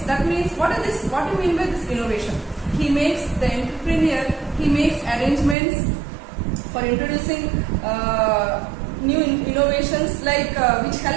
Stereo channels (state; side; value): drops out; left; at 5.6 s